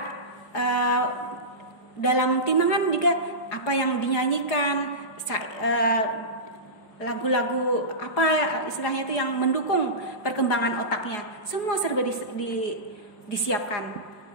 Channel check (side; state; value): right; late; 4.9 ms